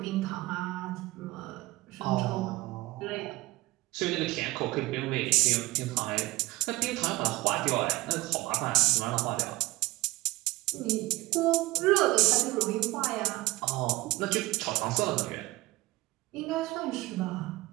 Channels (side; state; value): left; quieter; 20.1 dB